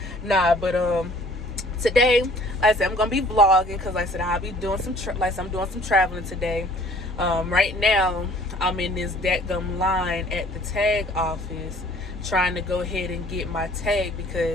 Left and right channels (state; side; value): normal; both; correlation 0.54